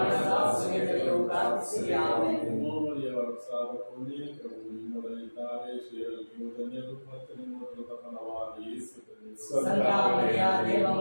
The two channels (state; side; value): inverted; both; correlation -1.00